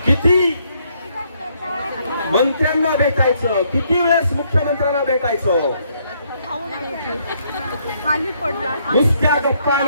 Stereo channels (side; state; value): both; inverted; correlation -0.71